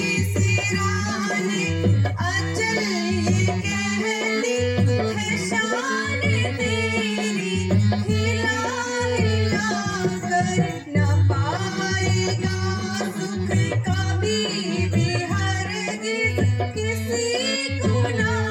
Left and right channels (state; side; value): identical; both; correlation 1.00